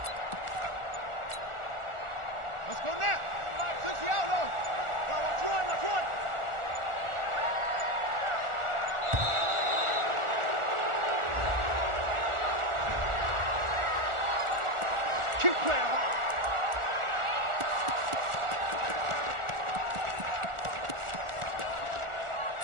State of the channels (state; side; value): late; left; 1.4 ms